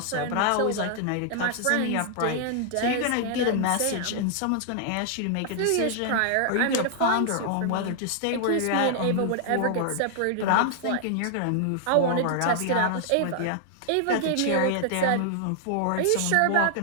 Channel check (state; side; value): different; both; correlation -0.01